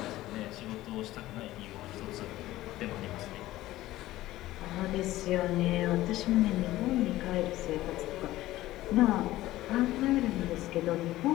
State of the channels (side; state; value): right; quieter; 16.1 dB